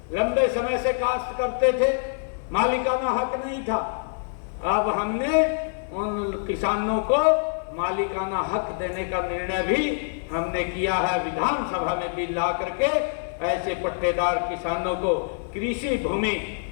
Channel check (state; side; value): silent; right; 61 dB below the other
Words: लंबे समय से काश्त करते थे, मालिकाना हक नहीं था, अब हमने उन किसानों को मालिकाना हक देने का निर्णय भी हमने किया है। विधानसभा में बिल ला करके ऐसे पट्टेदार किसानों को कृषि भूमि